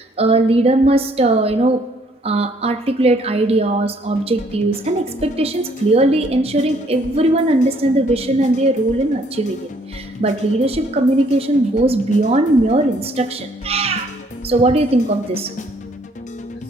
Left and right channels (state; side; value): normal; both; correlation 0.64